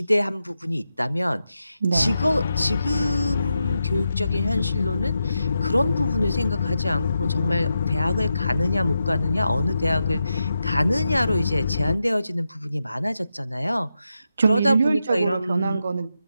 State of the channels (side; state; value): both; inverted; correlation -0.87